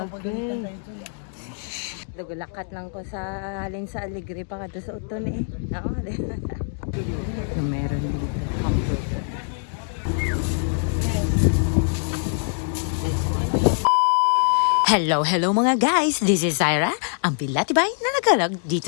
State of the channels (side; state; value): right; silent; digital silence